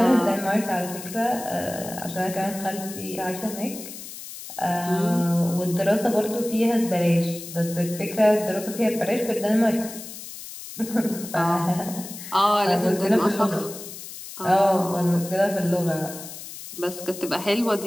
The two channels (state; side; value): noise; left; hiss, 12 dB below the sound